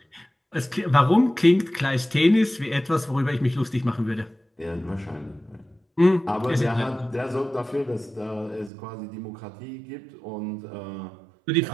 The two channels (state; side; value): drops out; left; at 8.7 s